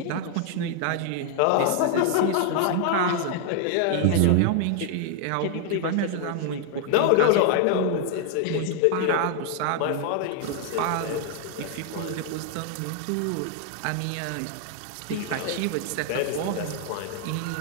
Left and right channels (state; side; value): different; both; correlation 0.00